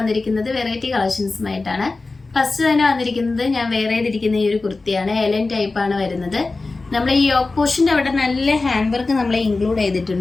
വെറൈറ്റി കളക്ഷൻസുമായിട്ടാണ്. ഫസ്റ്റ് തന്നെ വന്നിരിക്കുന്നത് ഞാൻ വേറെ ചെയ്തിരിക്കുന്ന ഈ ഒരു കുർത്തിയാണ്. എലൻ ടൈപ്പ് ആണ് വരുന്നത്. നമ്മൾ ഈ യോക്ക് പോർഷൻ്റെ അവിടെ നല്ല ഹാൻഡ് വർക്ക് നമ്മൾ ഇൻക്ലൂഡ്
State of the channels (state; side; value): quieter; right; 3.6 dB